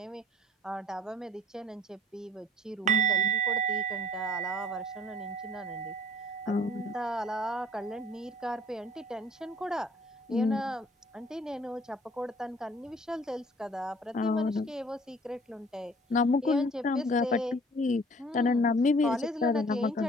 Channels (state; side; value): normal; both; correlation 0.53